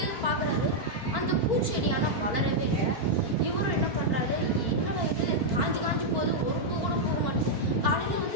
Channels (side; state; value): left; late; 4.4 ms